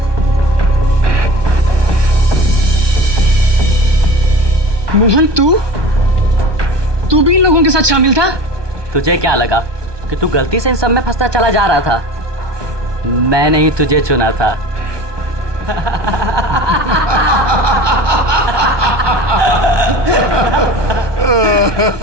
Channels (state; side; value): late; left; 1.2 ms